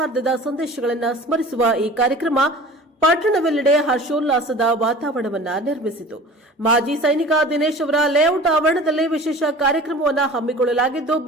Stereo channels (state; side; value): normal; both; correlation 0.41